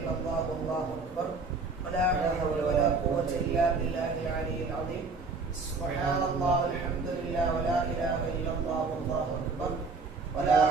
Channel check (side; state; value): left; quieter; 4.0 dB